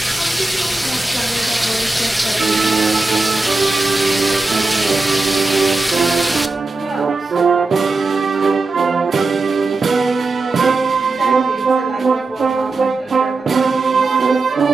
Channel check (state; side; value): quieter; left; 3.5 dB